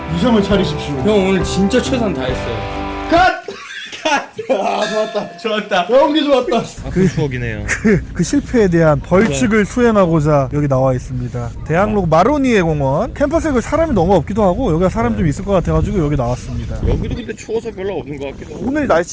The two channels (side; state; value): both; identical; correlation 1.00